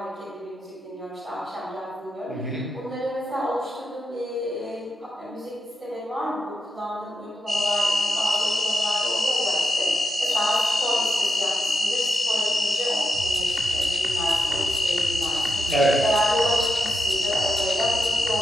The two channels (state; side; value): normal; both; correlation 0.85